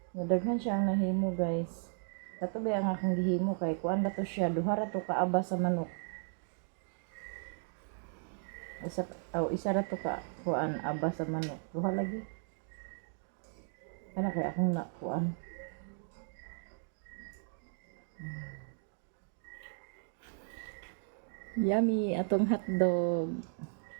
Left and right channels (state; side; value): silent; left; digital silence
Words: Nadaghan siya ang nahimo, guys. Kato ba ang akong gihimo kay kuan ba to siya duha ra to kaaba sa manok. Isa ra to ka kuan aba sa manok. Duha lagi. Kana kay akong na kuan. Yummy atong hotdog.